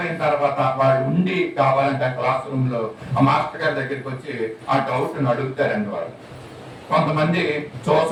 తర్వాత వాళ్ళు ఉండి కావాలంటే ఆ క్లాస్ రూమ్ లో ఆ మాస్టర్ గారి దగ్గరికి వచ్చి ఆ డౌట్ ని అడుగుతారండి. వాళ్ళు కొంతమంది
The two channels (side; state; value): both; identical; correlation 1.00